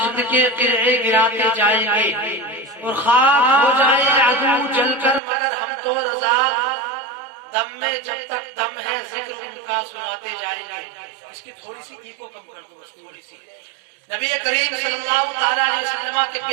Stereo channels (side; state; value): left; drops out; at 5.2 s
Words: کے قلعے گراتے جائیں گے، اور خاک ہو جائے عدو جل کر مگر ہم تو رضا، دم میں جب تک دم ہے ذکر ان کا سناتے جائیں گے۔ اس کی تھوڑی سی ایکو کم کر دو، بس تھوڑی سی۔ نبی کریم صلی اللہ تعالیٰ علیہ وسلم کے